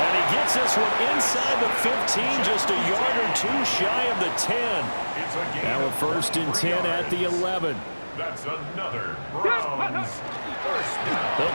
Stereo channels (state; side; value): inverted; both; correlation -1.00